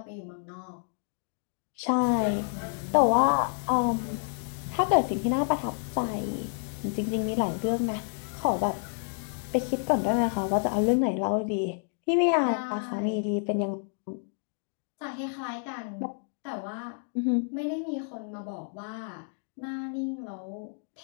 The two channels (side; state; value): right; silent; 58 dB below the other